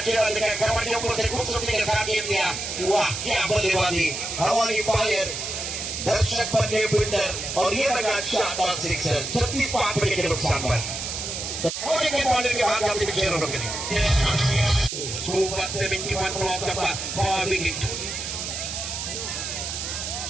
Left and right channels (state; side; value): noise; right; hiss, 5 dB below the sound